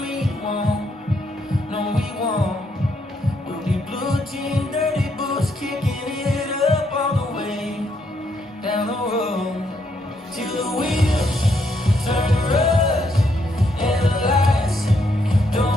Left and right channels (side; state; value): both; normal; correlation 0.75